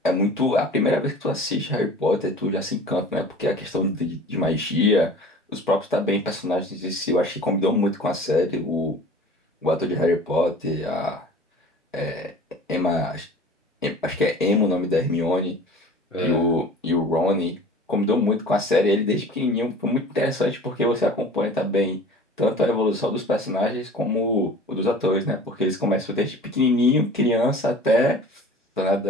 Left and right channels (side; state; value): both; normal; correlation 0.43